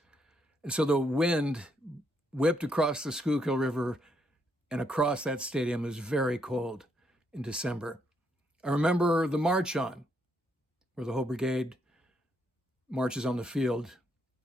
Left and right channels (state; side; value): normal; both; correlation 0.75